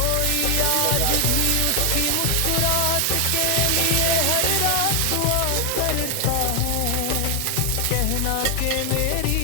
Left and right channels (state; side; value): different; both; correlation 0.00